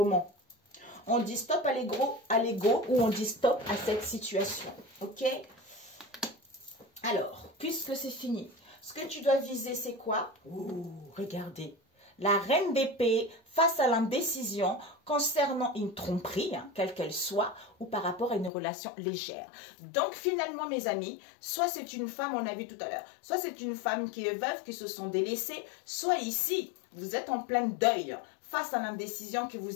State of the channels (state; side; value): drops out; right; at 18.5 s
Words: On dit stop à l'ego ou on dit stop à cette situation. Ok? Alors, puisque c'est fini. Ce que tu dois viser, c'est quoi? Ouh, regardez. La reine d'épée face à l'indécision concernant une tromperie, quelle qu'elle soit, ou par rapport à une relation légère. Donc, finalement, mes amis, soit c'est une femme, on a vu tout à l'heure, soit c'est une femme qui est veuve, qui se sont délaissées, soit ici, vous êtes en plein deuil face à l'indécision que